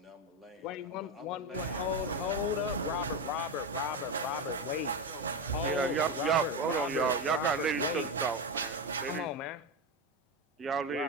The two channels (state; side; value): normal; both; correlation 0.14